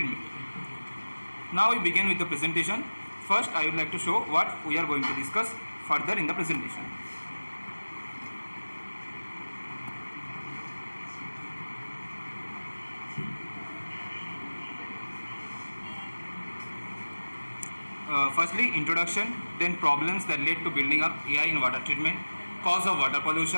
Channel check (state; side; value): inverted; both; correlation -1.00